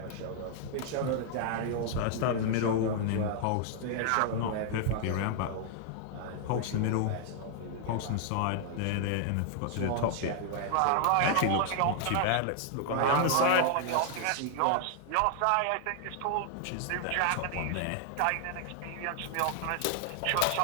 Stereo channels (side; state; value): both; different; correlation 0.00